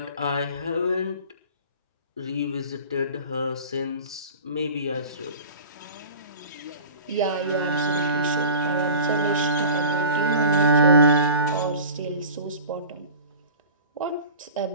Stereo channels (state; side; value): inverted; both; correlation -0.37